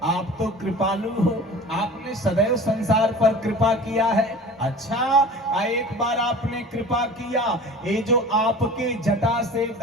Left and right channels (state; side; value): normal; both; correlation 0.40